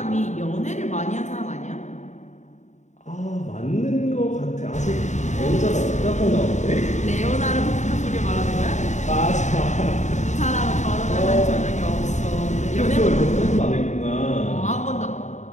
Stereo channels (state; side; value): late; right; 0.34 ms